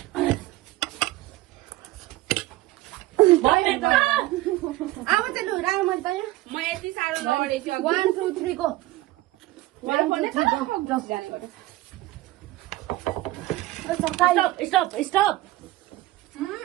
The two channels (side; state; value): left; quieter; 17.7 dB